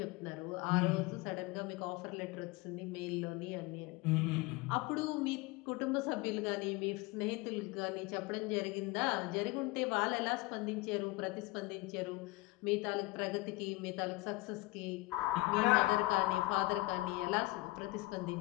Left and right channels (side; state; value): right; quieter; 20.7 dB